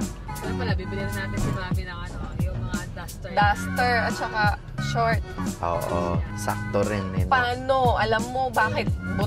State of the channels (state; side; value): identical; both; correlation 1.00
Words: Kaya pala, bibili na natin si Mami ng ano, yung mga duster. Duster at saka short. Oo, sakto rin eh. No? Paano? Alam mo bakit